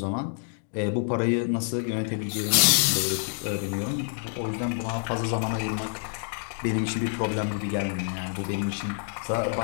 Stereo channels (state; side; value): silent; right; 60 dB below the other